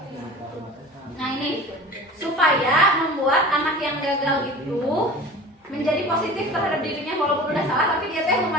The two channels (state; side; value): normal; both; correlation 0.38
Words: Nah ini supaya membuat anak yang gagal itu menjadi positif terhadap dirinya, walaupun udah salah tapi dia teh